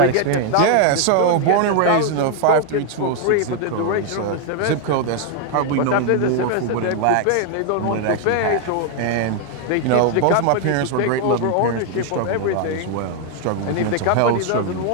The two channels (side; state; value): both; different; correlation 0.00